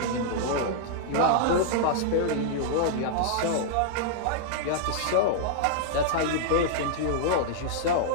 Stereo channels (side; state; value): both; different; correlation -0.01